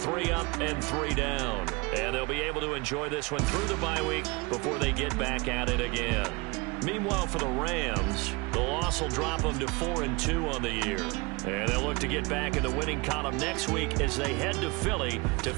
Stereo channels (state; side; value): quieter; left; 26.4 dB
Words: up and 3 down. And they'll be able to enjoy this one through the bye week before they get back at it again. Meanwhile, for the Rams, the loss will drop them to 4-2 on the year. And they'll look to get back in the winning column next week as they head to Philly to